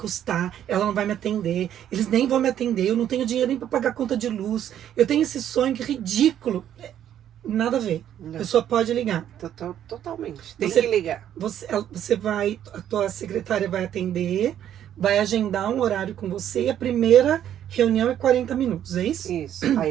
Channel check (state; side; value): quieter; left; 10.5 dB